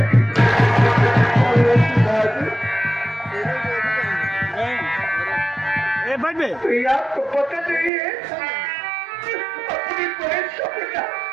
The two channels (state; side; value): drops out; left; at 7.9 s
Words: आपको पता नहीं है, अपनी बहन सपना